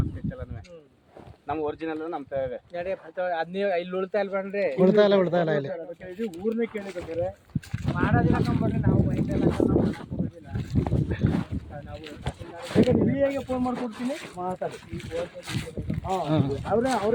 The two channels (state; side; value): identical; both; correlation 1.00